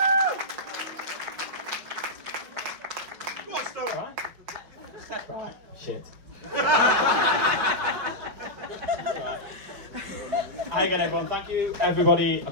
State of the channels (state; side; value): late; left; 5.3 ms